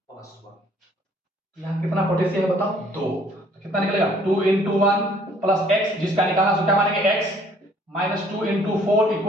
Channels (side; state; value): both; normal; correlation 0.60